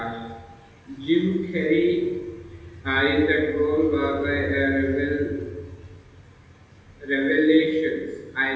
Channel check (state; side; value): identical; both; correlation 1.00